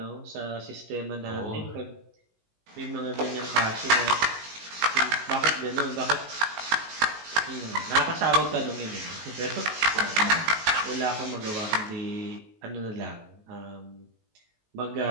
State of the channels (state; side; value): late; left; 19 ms